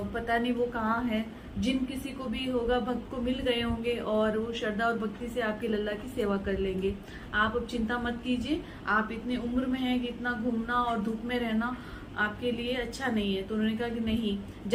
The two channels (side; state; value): both; identical; correlation 1.00